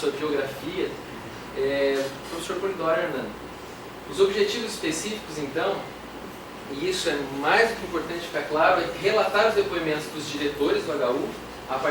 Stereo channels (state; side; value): identical; both; correlation 1.00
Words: biografia, o professor Polidoro Hernando. Os objetivos específicos, então, e isso é mais do que importante ficar claro, é relatar os depoimentos dos diretores do HU a